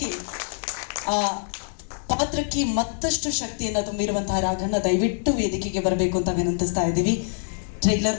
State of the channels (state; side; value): silent; right; digital silence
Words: ಆ ಪಾತ್ರಕ್ಕೆ ಮತ್ತಷ್ಟು ಶಕ್ತಿಯನ್ನು ತುಂಬಿರುವಂತಹ ರಾಘಣ್ಣ ದಯವಿಟ್ಟು ವೇದಿಕೆಗೆ ಬರಬೇಕು ಅಂತ ವಿನಂತಿಸ್ತಾ ಇದ್ದೀವಿ. ಟ್ರೈಲರ್